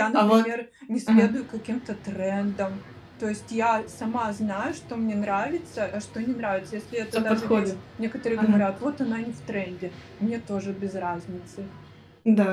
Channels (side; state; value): both; identical; correlation 1.00